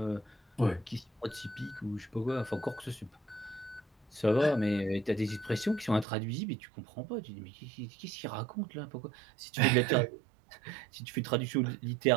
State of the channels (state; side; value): drops out; left; at 6.1 s